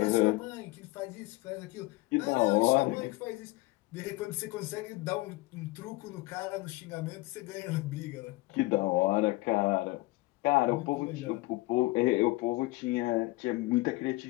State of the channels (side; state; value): right; quieter; 21.4 dB